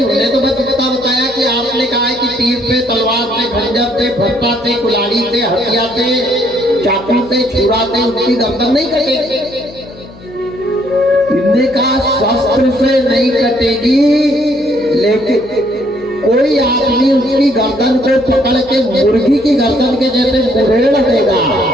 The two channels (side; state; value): left; noise; hum, 20 dB below the sound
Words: उन्हें तो बस इतना बताया कि आपने कहा है कि तीर से, तलवार से, खंजर से, फट्टा से, कुल्हाड़ी से, हथियार से, चाकू से, छुरा से उसकी गर्दन नहीं कटेगी। इनने कहा शस्त्र से नहीं कटेगी, लेकिन कोई आदमी उसकी गर्दन को पकड़ के मुर्गी की गर्दन के जैसे मुरेड़ देगा